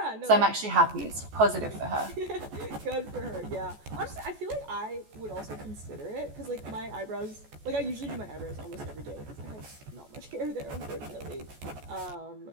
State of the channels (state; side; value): late; left; 14 ms